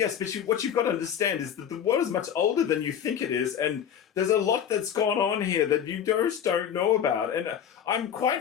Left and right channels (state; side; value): quieter; right; 8.8 dB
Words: but what you've got to understand is that the world is much older than you think it is, and there's a lot that's gone on here that you just don't know about. And I'm quite